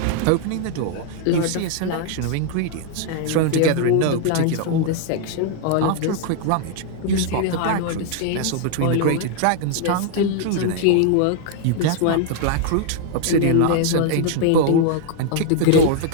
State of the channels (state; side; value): different; both; correlation 0.00